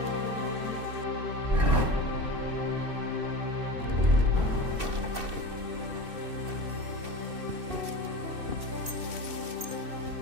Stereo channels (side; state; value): left; late; 2.6 ms